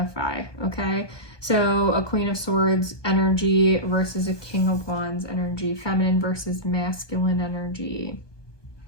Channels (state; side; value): late; right; 1.2 ms